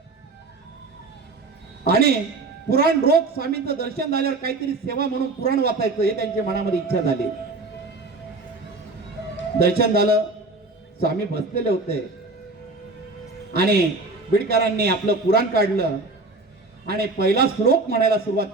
आणि पुराण रोज स्वामींचं दर्शन झाल्यावर काहीतरी सेवा म्हणून पुराण वाचायचं, हे त्यांच्या मनामध्ये इच्छा झाली. दर्शन झालं, स्वामी बसलेले होते आणि बिडकरांनी आपलं पुराण काढलं आणि पहिला श्लोक म्हणायला सुरुवात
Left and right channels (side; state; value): left; quieter; 3.4 dB